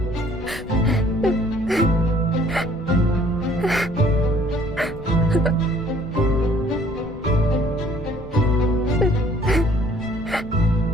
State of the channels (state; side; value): noise; left; rumble, 16 dB below the sound